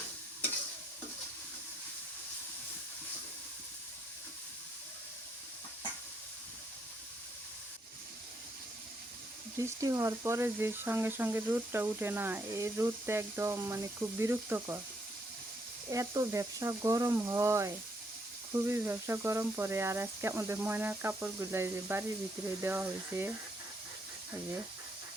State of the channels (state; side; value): normal; both; correlation 0.74